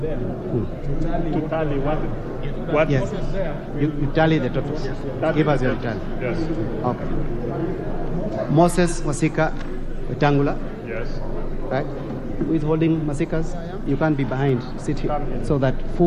to tally what Yes. is there? You tally the totals. Give us your tally. Yes. Okay. Moses Masika Wetangula. Yes. Right? Who is holding Masikas? You can't be behind. Sit here. So that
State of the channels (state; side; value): identical; both; correlation 1.00